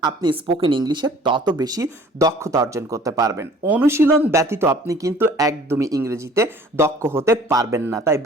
আপনি স্পোকেন ইংলিশে তত বেশি দক্ষতা অর্জন করতে পারবেন। অনুশীলন ব্যতীত আপনি কিন্তু একদমই ইংরেজিতে দক্ষ হতে পারবেন না। তাই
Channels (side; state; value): both; normal; correlation 0.52